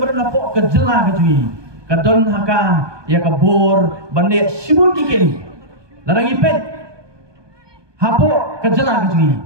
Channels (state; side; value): late; left; 1.2 ms